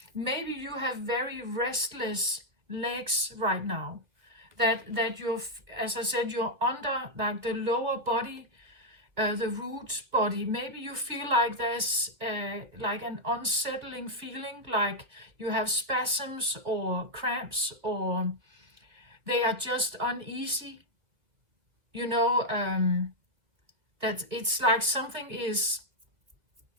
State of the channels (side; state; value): left; late; 2.2 ms